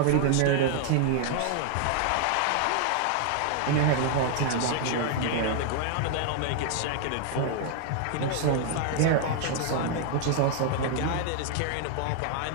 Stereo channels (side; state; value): both; different; correlation 0.00